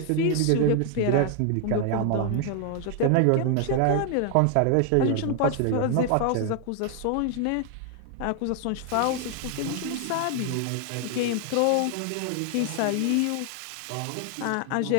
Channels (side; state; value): both; different; correlation 0.00